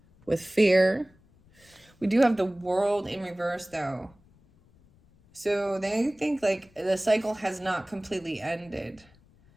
with fear. We do have the World in reverse, though. So they think like the cycle has not completely ended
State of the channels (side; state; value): left; noise; rumble, 30 dB below the sound